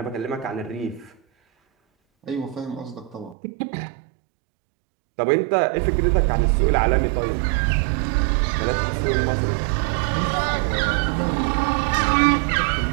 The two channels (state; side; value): drops out; left; at 3.4 s